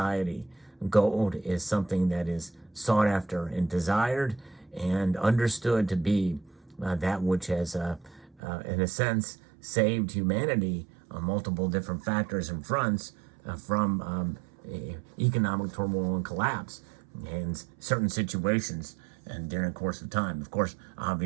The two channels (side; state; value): left; drops out; at 8.4 s